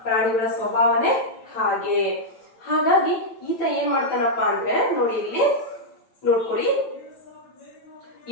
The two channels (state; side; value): late; right; 9.0 ms